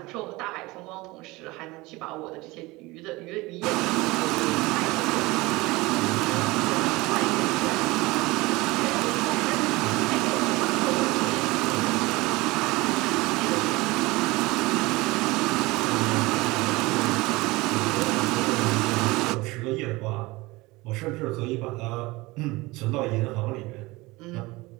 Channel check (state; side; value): quieter; left; 21.8 dB